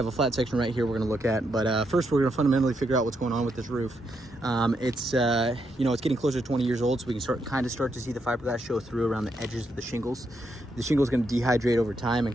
a flat section right here we're going to look at. But first, we're going to fundamentally figure out what's going on with this roof. It's getting closer to 20 years old, so we can start to see the fiberglass show through around the edges of the shingles. The shingle is going to dehydrate over time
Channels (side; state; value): both; normal; correlation 0.80